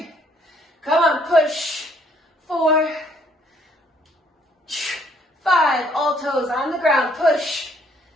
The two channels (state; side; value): normal; both; correlation 0.65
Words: Come on, push. 4, 5, all toes on the ground, push.